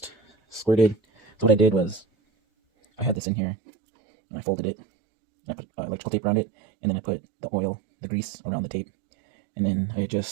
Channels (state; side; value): drops out; left; at 3.2 s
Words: squirted. So what I did was, I had this in here, and I folded it, and I put electrical tape around it, and then I put the oil, the grease around the tape, and then I